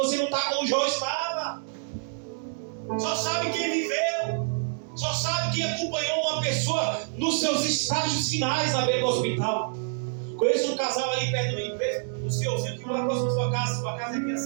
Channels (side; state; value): left; silent; digital silence